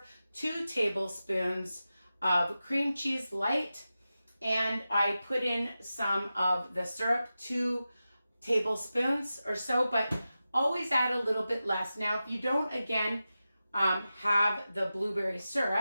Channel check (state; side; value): inverted; both; correlation -0.93